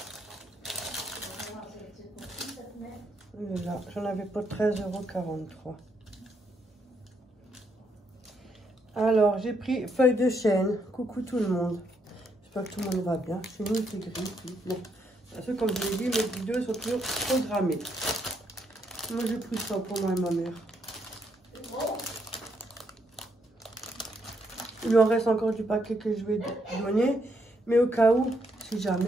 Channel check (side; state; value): both; normal; correlation 0.76